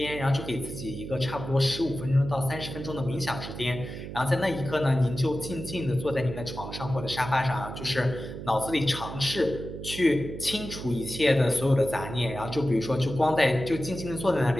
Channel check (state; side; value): noise; right; hum, 9 dB below the sound